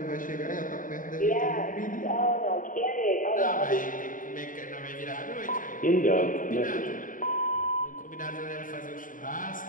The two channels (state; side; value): late; right; 0.39 ms